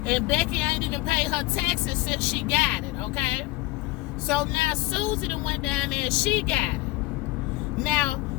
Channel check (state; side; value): quieter; right; 20.3 dB